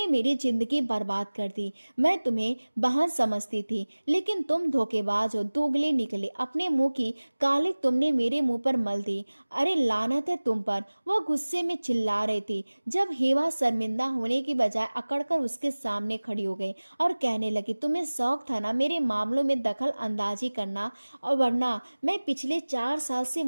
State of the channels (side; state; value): both; inverted; correlation -1.00